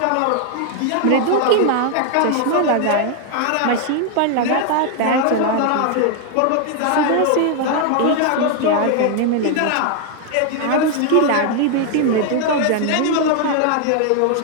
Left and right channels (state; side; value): different; both; correlation 0.00